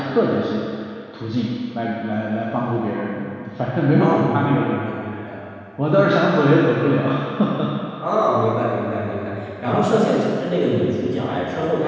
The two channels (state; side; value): identical; both; correlation 1.00